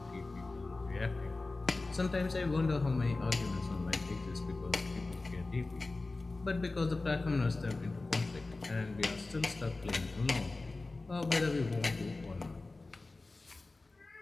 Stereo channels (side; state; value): right; quieter; 3.3 dB